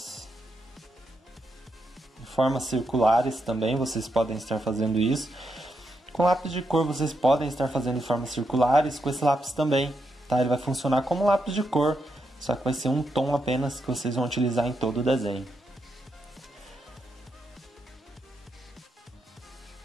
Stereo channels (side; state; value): both; normal; correlation 0.82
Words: de formas circulares também, vocês podem estar fazendo isso. Com lápis de cor vocês podem estar fazendo de formas circulares, com esse lápis também, tá? Ele vai funcionar como lápis de cor, só que vai ser um tom apenas que vocês vão utilizar em todo o desenho.